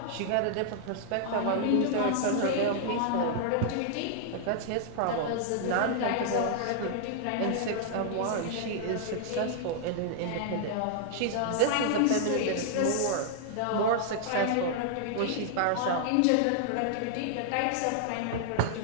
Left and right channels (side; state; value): both; different; correlation -0.01